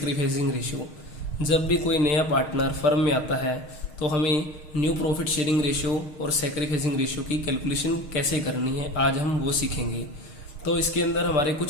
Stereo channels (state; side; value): late; right; 6.4 ms